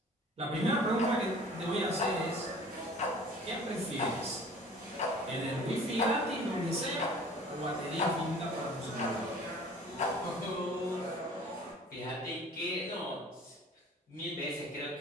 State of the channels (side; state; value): both; normal; correlation 0.47